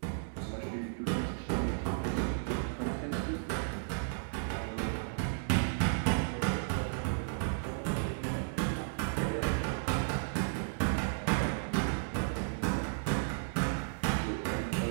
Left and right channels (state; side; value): silent; left; digital silence